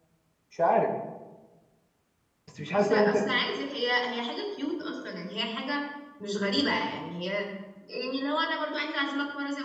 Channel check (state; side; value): identical; both; correlation 1.00